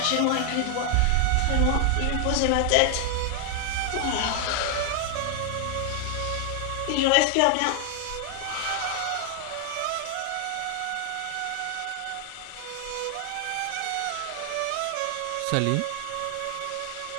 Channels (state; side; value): different; both; correlation 0.00